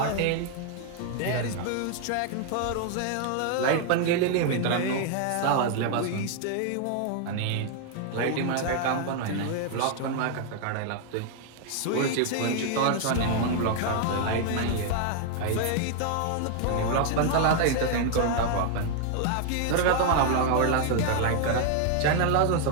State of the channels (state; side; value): different; both; correlation 0.00